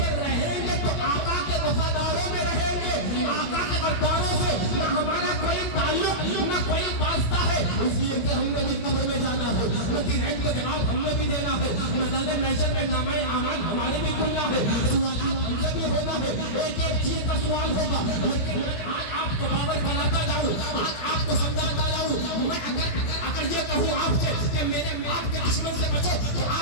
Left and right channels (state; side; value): late; right; 17 ms